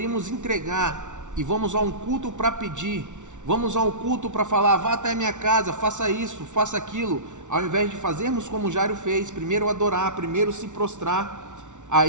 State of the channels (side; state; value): left; late; 0.86 ms